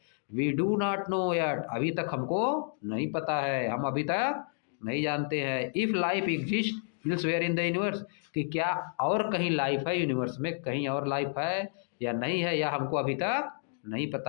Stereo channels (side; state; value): right; silent; digital silence